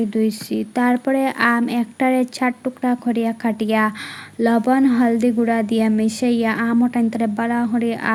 ধুইছি, তারপরে আম একটারে 4 টুকরা করিয়া কাটিয়া লবণ হলদি গুঁড়া দিয়া মিশাইয়া আম ওটাইন্তরে ভালো করে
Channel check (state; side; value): identical; both; correlation 1.00